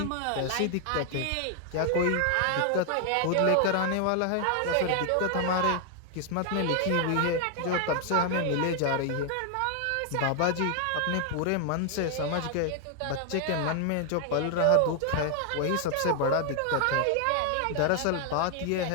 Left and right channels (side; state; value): both; different; correlation 0.00